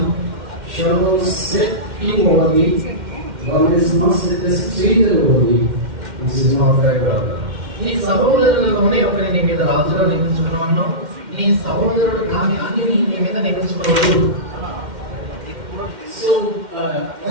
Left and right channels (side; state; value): left; late; 2.1 ms